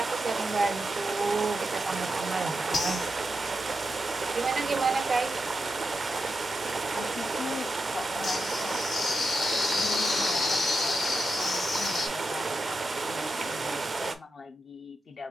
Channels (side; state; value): both; normal; correlation 0.88